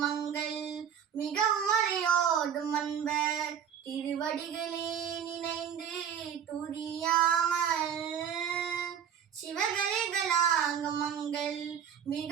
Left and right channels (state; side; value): quieter; left; 8.3 dB